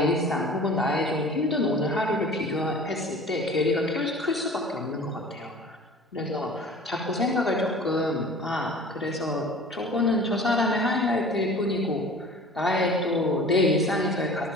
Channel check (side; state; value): both; normal; correlation 0.43